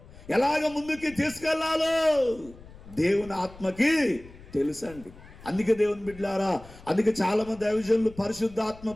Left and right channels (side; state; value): left; noise; rumble, 20 dB below the sound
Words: ఎలాగ ముందుకి తీసుకెళ్లాలో దేవుని ఆత్మకి తెలుసండి. అందుకే దేవుని బిడ్డలారా, అందుకే చాలా మంది దైవజనులు పరిశుద్ధ ఆత్మ